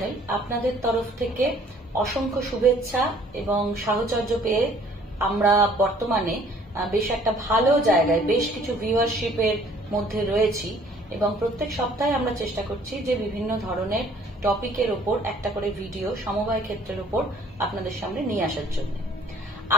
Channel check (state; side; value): normal; both; correlation 0.57